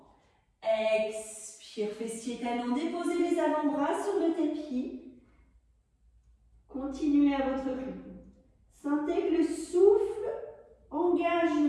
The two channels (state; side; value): identical; both; correlation 1.00